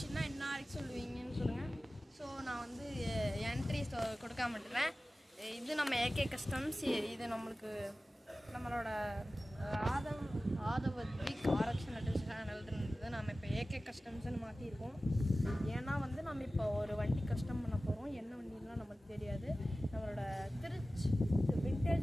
என்ன வரைக்கும் சொல்லுவீங்கன்னு சொல்லுங்கள். ஸோ நான் வந்து என்ட்ரிஸ் கொடுக்காம விட்டுறேன். இது நம்ம ஏகே கஸ்டம்ஸ். இது நம்மளோட ஆதவத்விக் ஆரக்ஷன் சேனல்ன்றது நம்ம இப்போ ஏகே கஸ்டம்ஸ்ன்னு மாற்றிருக்கோம். ஏன்னா வந்து நம்ம இப்போ ஒரு வண்டி கஸ்டம் பண்ண போகிறோம். என்ன வண்டிலாம் நமக்கு தெரியாது. நம்மளோட திருச்சி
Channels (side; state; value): both; normal; correlation 0.96